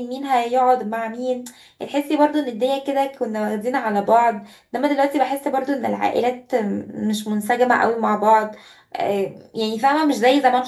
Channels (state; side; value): identical; both; correlation 1.00